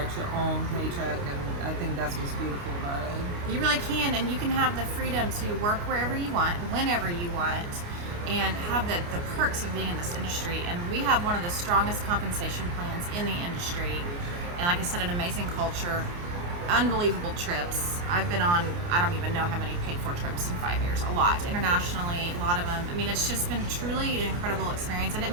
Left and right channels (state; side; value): late; left; 29 ms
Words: your own paycheck, and I think that's what's beautiful about it. You really can, and you can have the freedom to work wherever you want, whenever you want, and have the perks of being in this industry. And we have one of the strongest compensation plans in the industry, and like I said, an amazing culture, unbelievable trips. I've been on, I don't even know how many paid for trips in 5 years, a lot, internationally, a lot of them. I mean, it's just been truly an incredible experience, and it